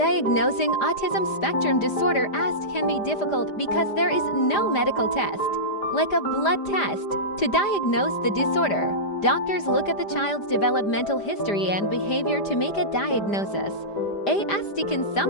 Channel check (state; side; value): late; right; 5.0 ms